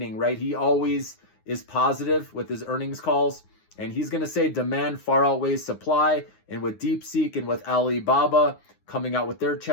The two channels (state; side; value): late; right; 9.6 ms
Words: right? He always is positive with his earnings calls. And he's going to say demand far outweighs supply. And with DeepSeek and with Alibaba coming out with their